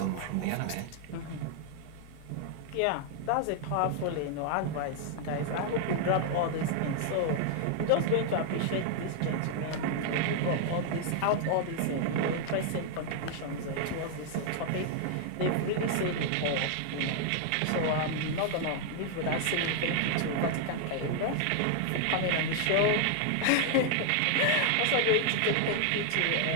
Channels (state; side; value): different; both; correlation 0.00